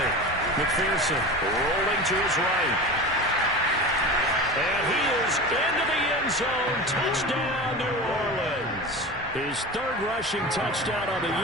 McPherson rolling to his right. And he is into the end zone. Touchdown, New Orleans. His 3rd rushing touchdown on the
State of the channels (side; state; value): both; normal; correlation 0.30